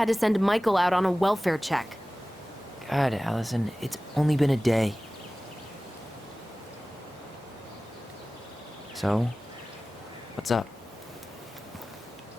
to send Michael out on a welfare check. God, Allison, it's only been a day. So, what's up?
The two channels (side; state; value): both; normal; correlation 0.97